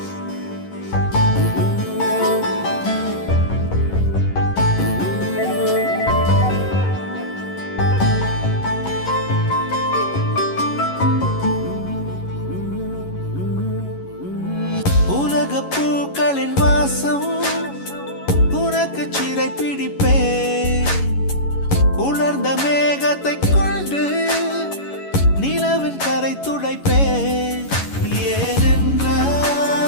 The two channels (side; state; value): right; late; 11 ms